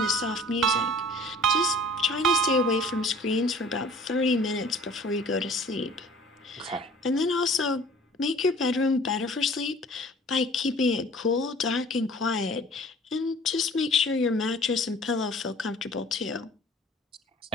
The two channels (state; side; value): normal; both; correlation 0.49